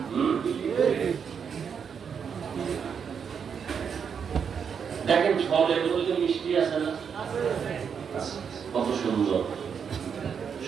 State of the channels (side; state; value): left; quieter; 6.9 dB